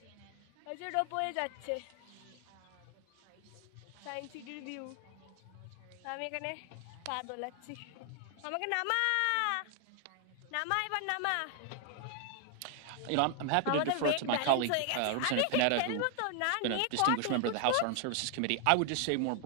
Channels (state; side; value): different; both; correlation 0.00